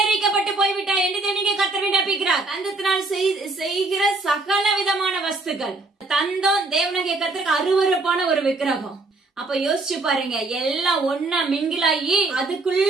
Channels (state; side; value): quieter; left; 3.3 dB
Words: போய்விட்டாய் என்று தேவனுடைய கர்த்தர் விண்ணப்பிக்கிறார். தந்தத்தினால் செய்கிற சகல விதமான வஸ்துக்கள். தந்தம் தேவனுடைய கர்த்தருக்கு அருவருப்பான ஒரு விக்கிரகம். அப்ப யோசிச்சு பாருங்க, எல்லாம் ஒன்னா மிங்கிலாகி